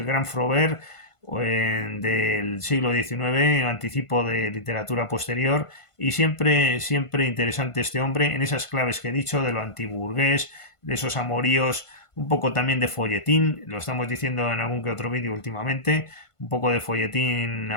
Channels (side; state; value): right; late; 1.5 ms